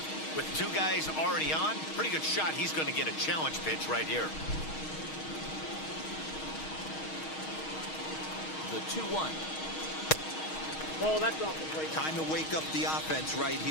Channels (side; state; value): right; late; 6.4 ms